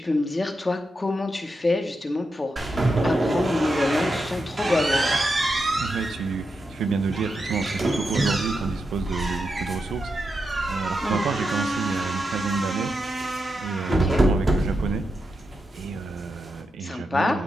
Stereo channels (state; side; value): normal; both; correlation 0.86